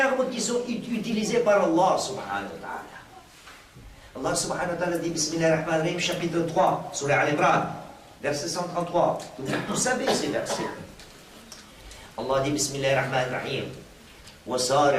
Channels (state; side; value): identical; both; correlation 1.00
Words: qui sont utilisés par Allah subhanahu wa ta'ala. Allah subhanahu wa ta'ala dit Bismillahirrahmanirrahim, chapitre 3, surah Al-Imran, verset 133. Vous savez ces versets. Allah dit Bismillahirrahmanirrahim.